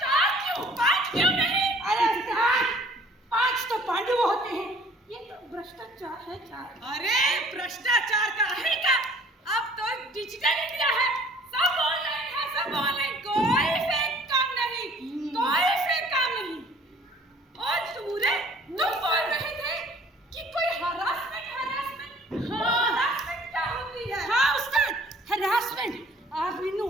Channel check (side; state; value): both; normal; correlation 0.53